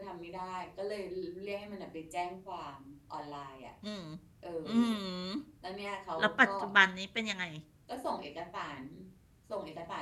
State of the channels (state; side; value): identical; both; correlation 1.00